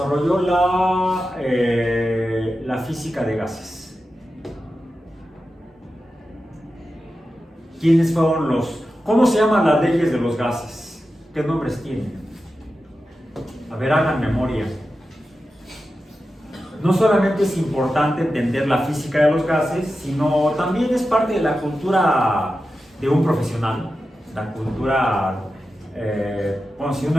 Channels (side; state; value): both; normal; correlation 0.92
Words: la física de gases? ¿Quiénes fueron los? ¿Cómo se llaman las leyes de los gases? ¿Qué nombres tienen? A ver, hagan memoria. No solamente es importante entender la física de los gases, sino también es parte de la cultura de un profesional. La cultura, bueno, si